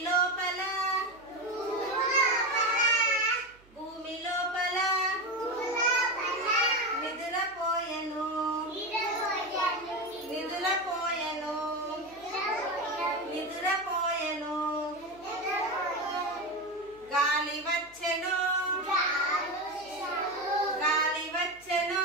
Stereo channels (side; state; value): right; noise; hum, 28 dB below the sound